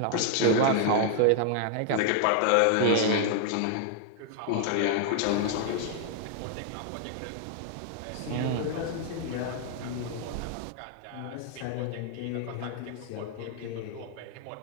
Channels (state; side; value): different; both; correlation 0.00